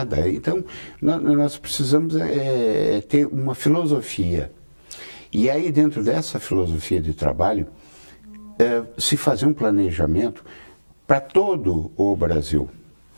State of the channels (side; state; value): both; inverted; correlation -1.00